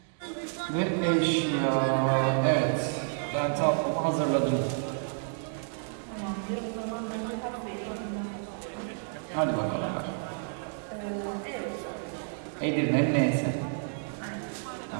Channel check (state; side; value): silent; left; digital silence